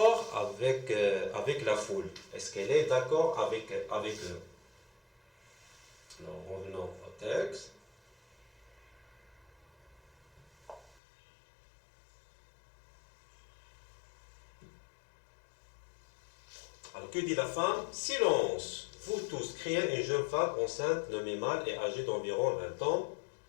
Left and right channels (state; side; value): drops out; right; at 11.0 s